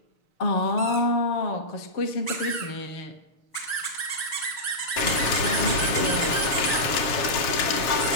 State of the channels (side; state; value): right; late; 6.8 ms